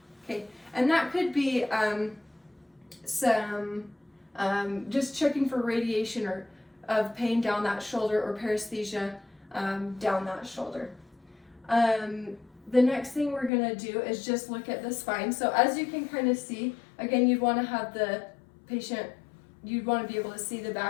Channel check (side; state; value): right; drops out; at 13.5 s